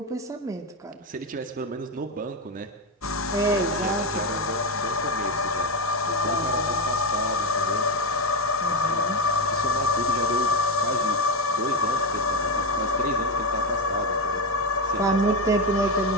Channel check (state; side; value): normal; both; correlation 0.11